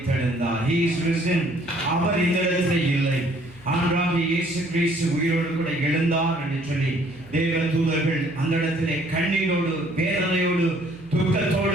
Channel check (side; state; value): right; noise; hum, 24 dB below the sound